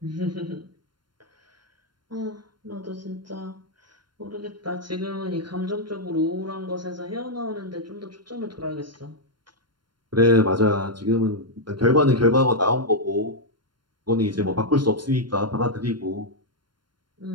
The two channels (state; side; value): late; left; 0.72 ms